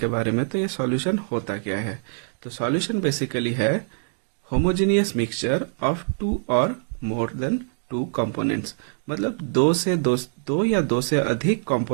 बारे में। तो ये सॉल्यूशन होता क्या है? तो सॉल्यूशन बेसिकली है होमोजेनियस मिक्सचर ऑफ टू और मोर देन टू कंपोनेंट्स। मतलब दो या दो से अधिक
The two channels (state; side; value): silent; left; digital silence